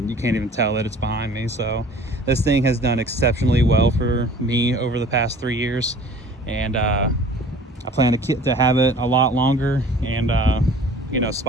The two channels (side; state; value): both; normal; correlation 0.47